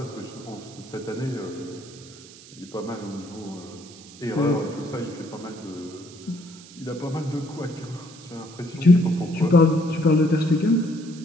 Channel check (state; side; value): noise; right; hiss, 19 dB below the sound